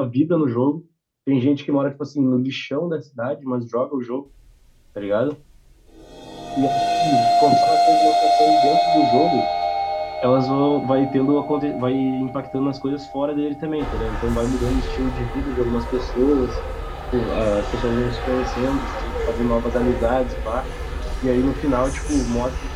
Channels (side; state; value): both; identical; correlation 1.00